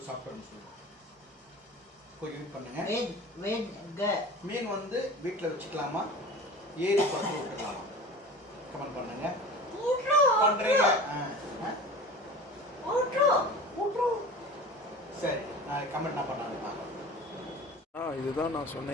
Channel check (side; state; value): both; normal; correlation 0.37